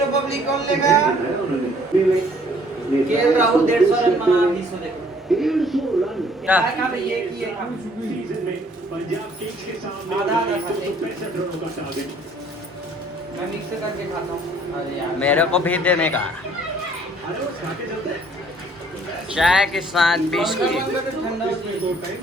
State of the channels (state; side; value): normal; both; correlation 0.59